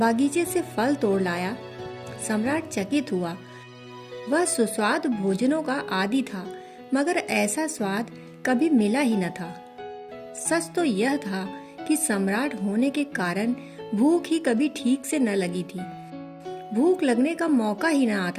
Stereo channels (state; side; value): identical; both; correlation 1.00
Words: से फल तोड़ लाया। सम्राट चकित हुआ। वह सुस्वादु भोजनों का आदी था, मगर ऐसा स्वाद कभी मिला ही न था। सच तो यह था कि सम्राट होने के कारण भूख ही कभी ठीक से न लगी थी। भूख लगने का मौका ही न